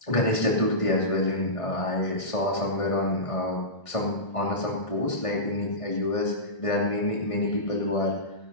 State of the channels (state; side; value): late; right; 1.5 ms